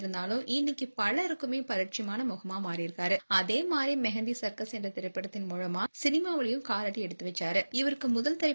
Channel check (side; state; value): both; inverted; correlation -1.00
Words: இன்னைக்கு பலருக்குமே பரிட்சயமான முகமா மாறியிருக்காரு. அதே மாதிரி மெஹந்தி சர்க்கஸ் என்ற திரைப்படத்தின் மூலமா சினிமாவிலையும் காலடி எடுத்து வச்சாரு. இவருக்கு முதல்